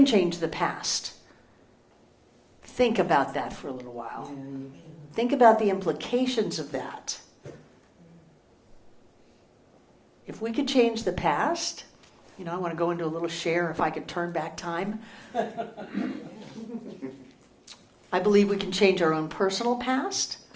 change the past. Think about that for a little while. Think about the implications of that. If we could change the past, I want to go into a little share if I could turn back time. I believe we can change our own personal past.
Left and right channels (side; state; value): both; identical; correlation 1.00